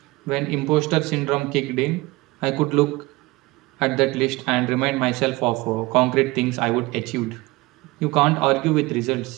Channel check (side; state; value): left; quieter; 21.6 dB